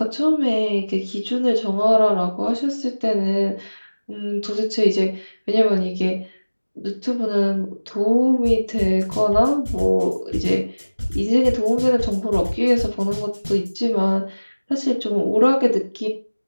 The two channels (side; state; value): both; inverted; correlation -1.00